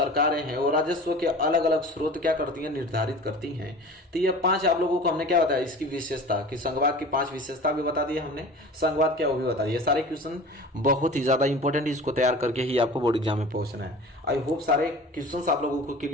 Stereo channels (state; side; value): normal; both; correlation 0.39